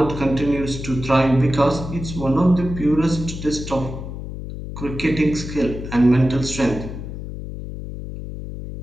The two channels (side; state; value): left; noise; hum, 9 dB below the sound